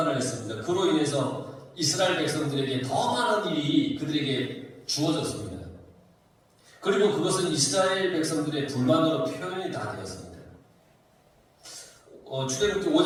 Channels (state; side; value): identical; both; correlation 1.00